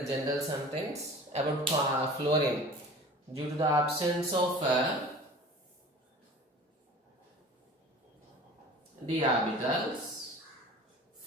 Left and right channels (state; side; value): normal; both; correlation 0.42